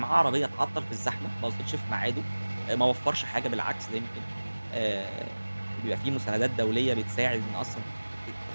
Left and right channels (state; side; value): inverted; both; correlation -1.00